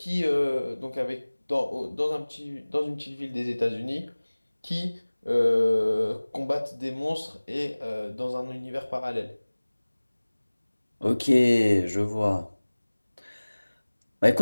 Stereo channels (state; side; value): inverted; both; correlation -1.00